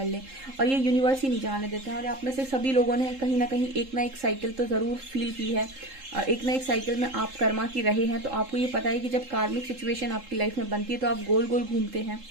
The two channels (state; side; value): late; left; 3.7 ms